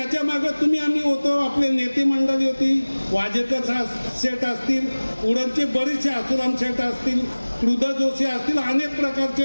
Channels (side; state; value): both; inverted; correlation -1.00